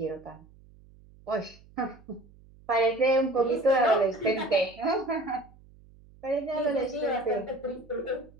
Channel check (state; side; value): noise; right; hum, 25 dB below the sound